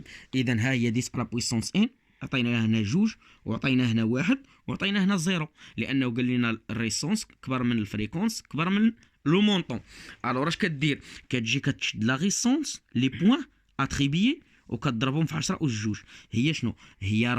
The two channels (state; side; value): identical; both; correlation 1.00